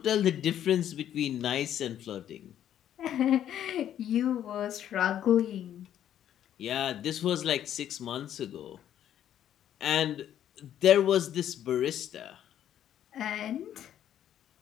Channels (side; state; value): right; quieter; 10.7 dB